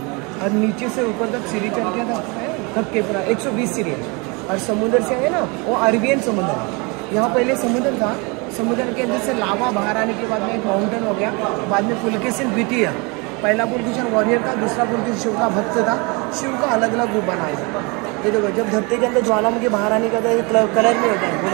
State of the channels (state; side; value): quieter; left; 29.3 dB